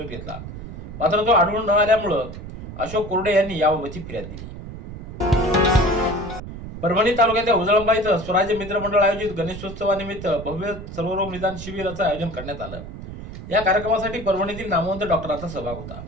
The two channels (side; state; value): right; noise; rumble, 11 dB below the sound